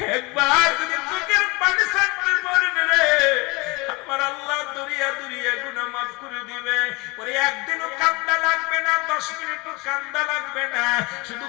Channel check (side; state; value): right; quieter; 25.9 dB